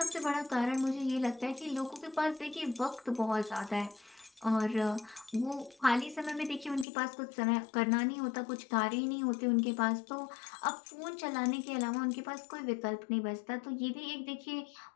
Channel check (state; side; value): drops out; right; at 6.9 s